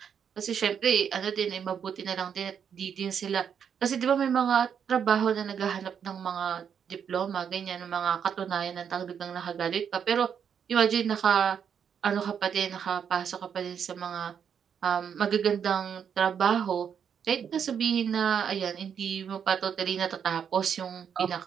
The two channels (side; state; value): left; quieter; 7.7 dB